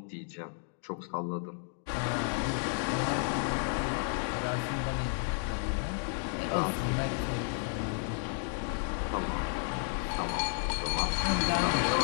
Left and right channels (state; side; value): silent; right; 56 dB below the other